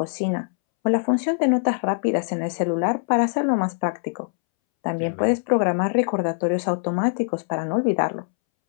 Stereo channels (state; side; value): silent; right; 63 dB below the other